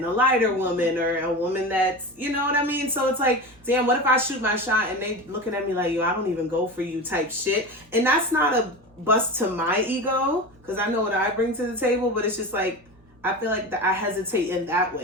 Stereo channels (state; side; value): normal; both; correlation 0.27